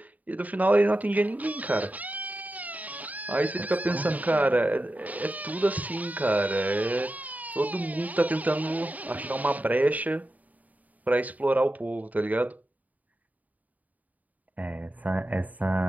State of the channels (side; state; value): left; late; 0.075 ms